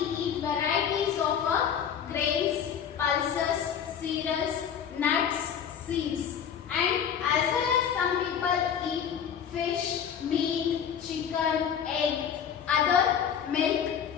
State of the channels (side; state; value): right; quieter; 8.2 dB